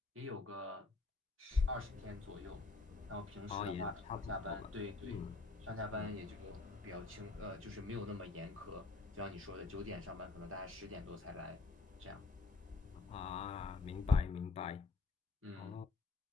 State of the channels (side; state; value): right; quieter; 3.8 dB